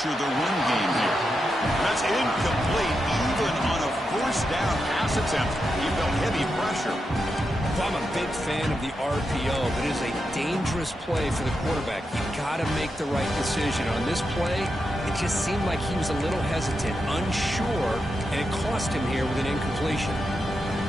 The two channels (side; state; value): both; normal; correlation 0.86